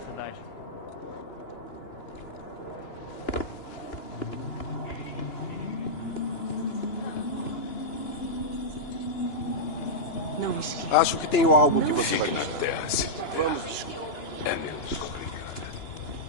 não esqueça. Acho que tenho algo que você vai Fique na terra, Cynthia. Vamos. É menos complicado.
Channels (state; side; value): late; right; 2.9 ms